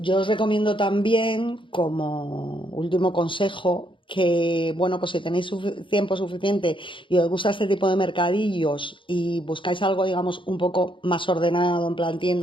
os recomiendo también, como último consejo, que, bueno, pues si tenéis tiempo suficiente y os gusta este tipo de mercadillos y buscáis algo, digamos, un poco más ordenado, en plan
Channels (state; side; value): late; right; 0.24 ms